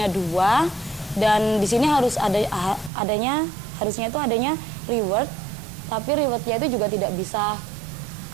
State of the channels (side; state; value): left; drops out; at 2.9 s